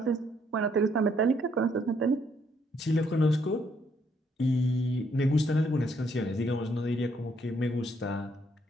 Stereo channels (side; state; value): both; normal; correlation 0.70